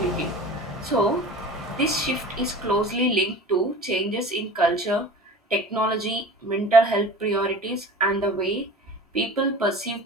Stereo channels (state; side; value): normal; both; correlation 0.38